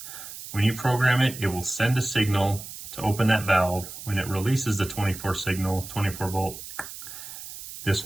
When you program it, it will send a signal to open that valve. When it releases the 24 signal, 24 volt, this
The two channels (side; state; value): right; noise; hiss, 12 dB below the sound